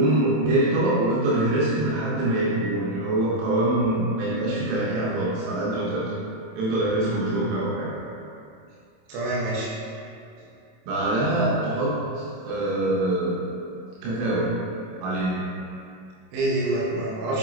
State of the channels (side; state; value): left; late; 27 ms